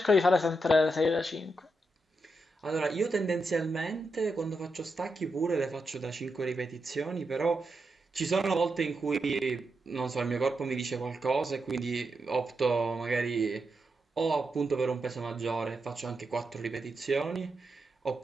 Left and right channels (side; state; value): both; normal; correlation 0.85